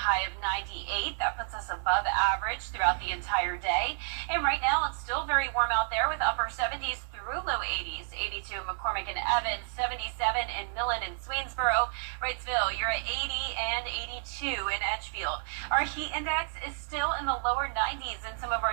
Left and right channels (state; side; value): silent; left; 57 dB below the other